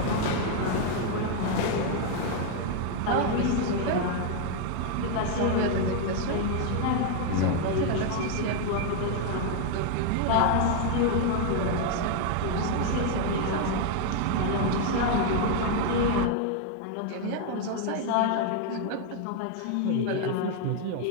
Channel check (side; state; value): both; different; correlation 0.00